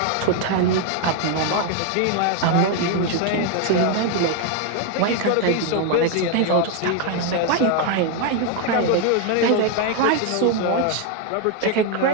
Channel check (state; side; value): different; both; correlation 0.01